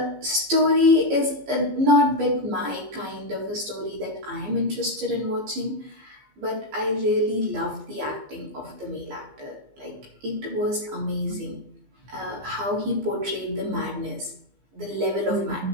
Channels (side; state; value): left; late; 15 ms